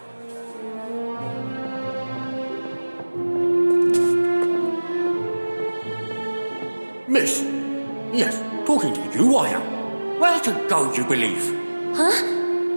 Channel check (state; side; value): inverted; both; correlation -1.00